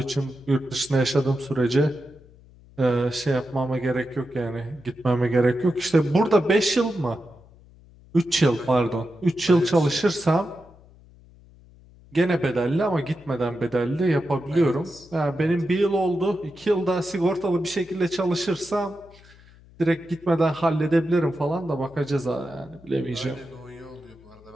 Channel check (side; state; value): left; noise; hum, 25 dB below the sound